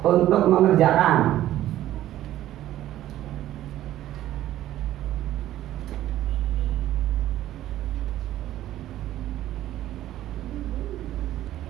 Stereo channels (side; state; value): left; quieter; 13.5 dB